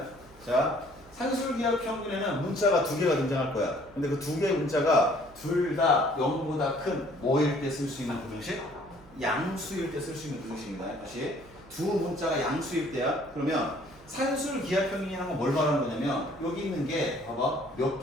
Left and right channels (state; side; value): noise; right; hum, 24 dB below the sound